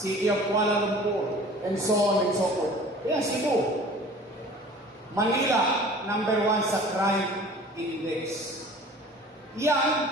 of Kuala Lumpur, and so on and so forth. Kaya Cebu. Manila, number 1 sa crime index. Yan,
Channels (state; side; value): normal; both; correlation 0.45